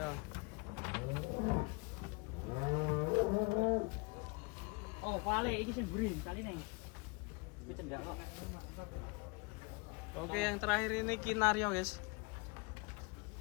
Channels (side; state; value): right; quieter; 28.4 dB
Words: Oh, vale iki sing burin kali nih. Iki cendak kok. Oke, yang terakhir ini Kinario, guys.